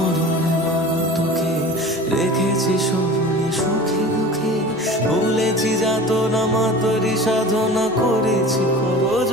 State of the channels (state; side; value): noise; right; rumble, 29 dB below the sound